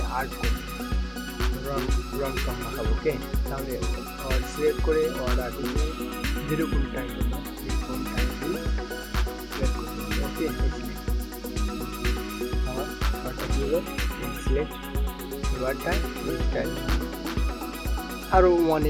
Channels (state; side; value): identical; both; correlation 1.00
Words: আর্ট করব, রং টং মাখাবো। ওকে, তাহলে ওয়ার্ড সিলেক্ট করে ওয়ার্ড আর্ট যেরকম টাইপ করবো এরকম টাইপ সিলেক্ট করতে হবে। ওকে, সিলেক্ট আমার ওয়ার্ডটা কী হলো, সিলেক্ট ওয়ার্ডটা এই স্টাইল। আরও